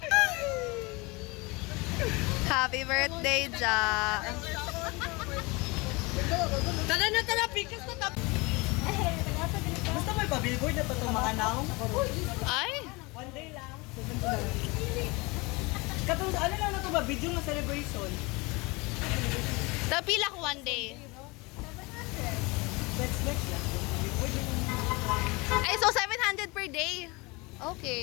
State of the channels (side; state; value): right; quieter; 25.7 dB